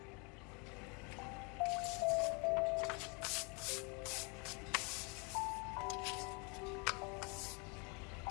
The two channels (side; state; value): right; quieter; 32.5 dB